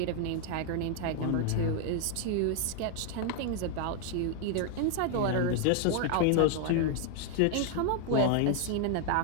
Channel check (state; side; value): different; both; correlation 0.00